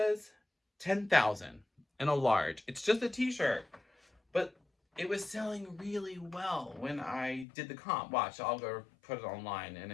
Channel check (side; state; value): right; drops out; at 7.5 s